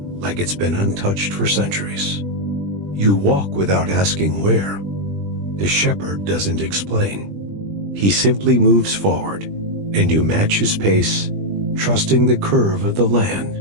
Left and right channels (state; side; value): late; left; 20 ms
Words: it's been untouched for centuries. You walk without asking where. The shepherd doesn't explain. He simply moves forward, and you match his pace, trusting the curve of the land,